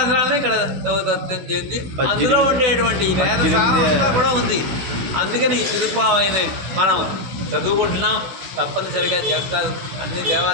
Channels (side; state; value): left; late; 16 ms